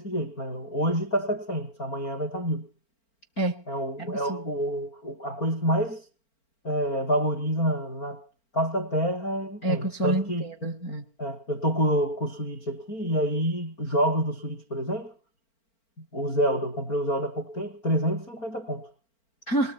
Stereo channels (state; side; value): late; right; 4.4 ms